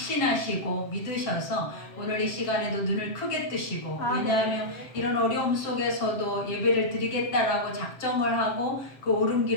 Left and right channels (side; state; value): right; late; 7.6 ms